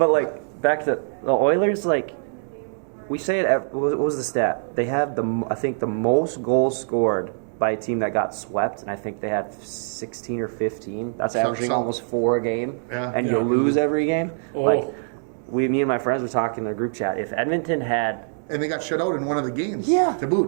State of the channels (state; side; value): silent; left; digital silence